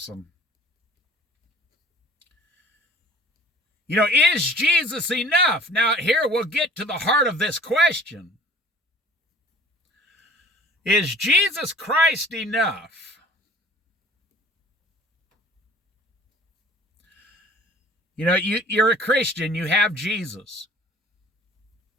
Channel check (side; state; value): both; normal; correlation 0.49